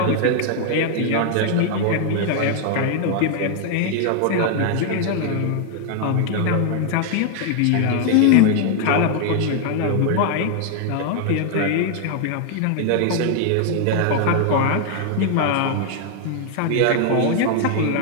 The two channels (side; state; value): both; different; correlation 0.00